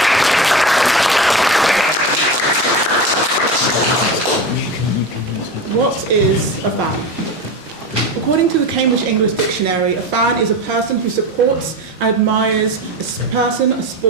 What is a fan? According to the Cambridge English Dictionary, a fan is a person who supports and admires a person, a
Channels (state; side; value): normal; both; correlation 0.26